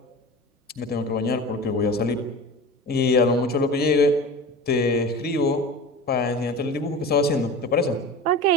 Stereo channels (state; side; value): normal; both; correlation 0.33